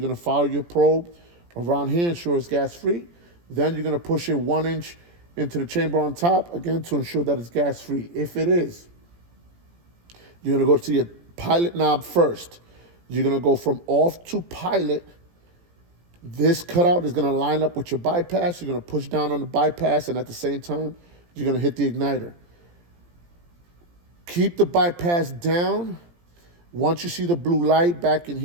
gonna follow your probe around here, ensure it's gas free. Then you're gonna push it 1 inch into the chamber on top, again, to ensure that it's gas free. If it is, you're gonna go to your pilot knob first. You're gonna go from off to pilot. This cutout is gonna line up with your bypass. You're gonna push down on the bypass, and at the same time, you're gonna hit the igniter. Keep the bypass down. Once you see the blue light back in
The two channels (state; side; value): late; left; 17 ms